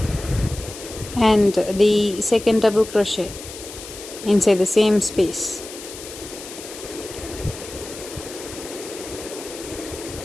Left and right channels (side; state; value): left; noise; hiss, 13 dB below the sound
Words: and the second double crochet inside the same space,